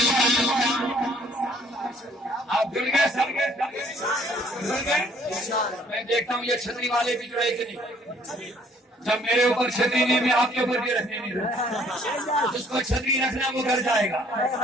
آپ جڑ گئے سب میں دیکھتا ہوں یہ چھتری والے بھی جڑے کہ نہیں. جب میرے اوپر چھتری نہیں میں آپ کے اوپر بھی رکھنے نہیں رہا. جس کو چھتری رکھنا وہ گھر جائے گا.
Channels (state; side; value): normal; both; correlation 0.60